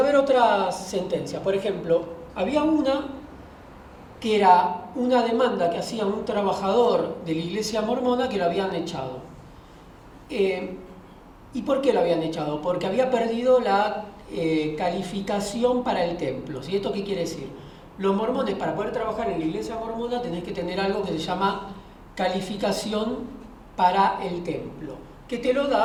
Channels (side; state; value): both; identical; correlation 1.00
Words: ver otras sentencias. Por ejemplo, había una que era una demanda que hacía un trabajador de la iglesia mormona que lo habían echado. ¿Y por qué lo habían echado? Porque había perdido la calificación para el templo. ¿Sí? ¿Esto qué quiere decir? Los mormones, para poder trabajar en la iglesia mormona, tenés que tener algo que se llama calificación para el templo, que te lo